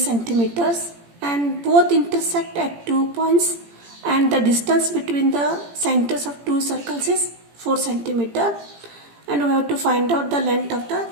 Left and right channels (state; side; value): late; left; 17 ms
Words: and both intersect at 2 points and the distance between the centers of two circles is 4 centimeter and we have to find out the length of the